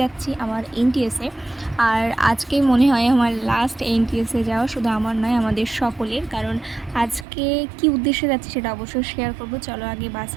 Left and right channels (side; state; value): left; drops out; at 7.2 s